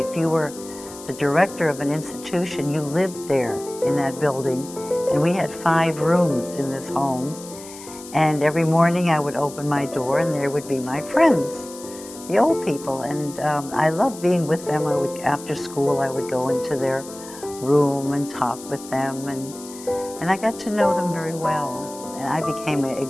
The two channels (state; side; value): noise; left; hiss, 16 dB below the sound